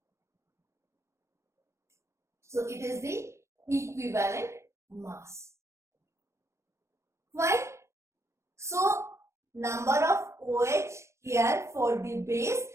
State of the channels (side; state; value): left; late; 0.14 ms